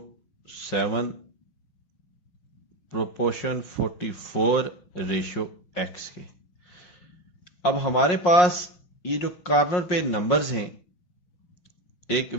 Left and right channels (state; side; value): late; right; 5.6 ms